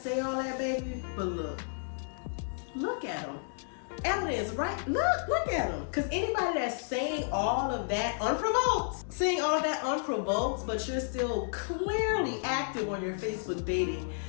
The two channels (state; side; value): silent; right; digital silence